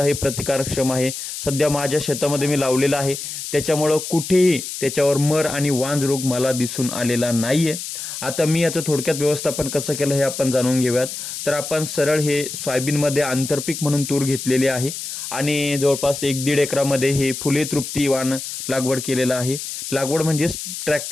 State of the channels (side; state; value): left; noise; hiss, 7 dB below the sound